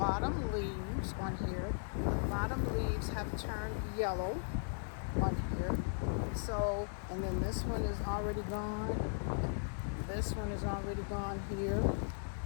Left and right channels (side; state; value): right; silent; digital silence